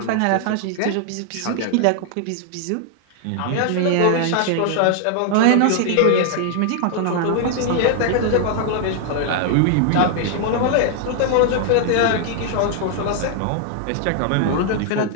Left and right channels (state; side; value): different; both; correlation 0.00